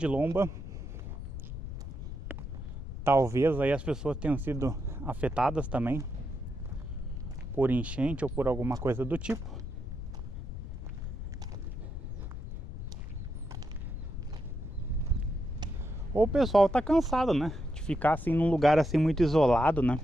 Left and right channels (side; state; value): left; noise; rumble, 8 dB below the sound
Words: lomba. Talvez aí as pessoas tenham sido afetadas também por enchente ou por alguma coisa do tipo. Ou o pessoal tá cansado, né? De ficar assim num lugar assim muito isolado, né?